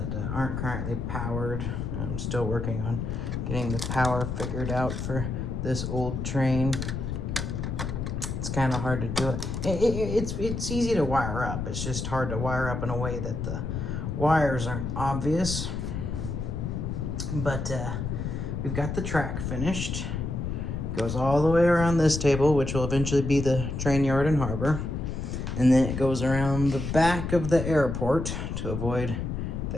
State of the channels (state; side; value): noise; left; rumble, 3 dB below the sound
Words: aren't currently powered. I'm still working on getting the power figured out for this old train. It's kind of hard to do it. It's easy to wire up. It's just hard to wire up in a way that the wires aren't obvious. But we've got the track finished. Goes all the way around this table, which will eventually be the train yard and harbor. And then it goes around the back of the airport to avoid